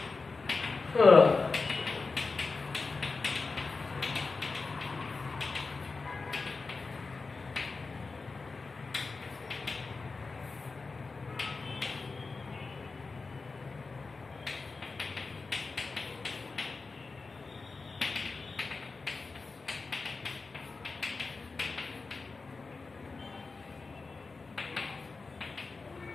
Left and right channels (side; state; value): right; quieter; 4.1 dB